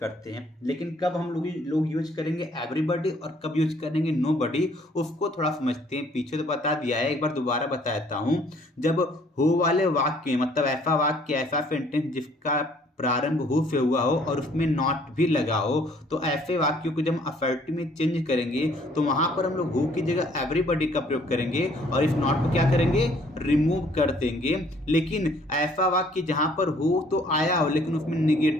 हैं। लेकिन कब हम लोग यूज करेंगे एवरीबॉडी और कब यूज करेंगे नोबॉडी, उसको थोड़ा समझते हैं। पीछे तो बता दिया है, एक बार दोबारा बता देता हूं। जब हु वाले वाक्य, मतलब ऐसा वाक्य, ऐसा सेंटेंस जिसका प्रारंभ हु से हुआ हो और उसमें नॉट भी लगा हो, तो ऐसे वाक्यों को जब असर्टिव में चेंज करेंगे तो वहां पर हम लोग हु की जगह एवरीबॉडी का प्रयोग करेंगे और इस नॉट को क्या करेंगे, रिमूव कर देंगे। लेकिन ऐसा वाक्य जहां पर हु तो आया हो लेकिन उसमें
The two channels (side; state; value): both; normal; correlation 0.60